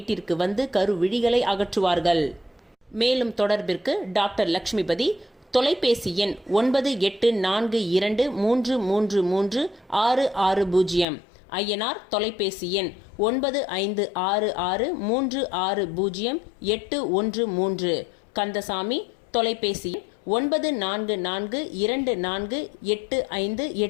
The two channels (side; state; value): right; drops out; at 11.1 s